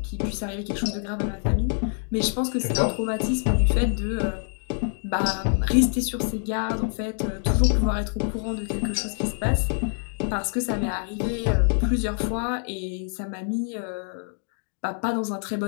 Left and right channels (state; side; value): silent; right; 56 dB below the other